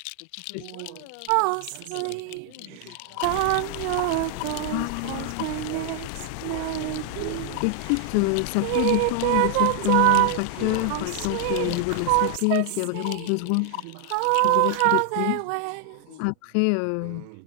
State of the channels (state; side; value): different; both; correlation 0.00